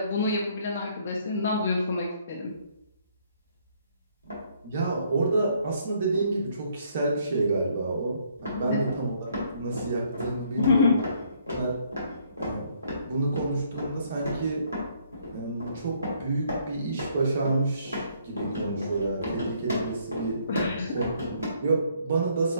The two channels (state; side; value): inverted; both; correlation -0.66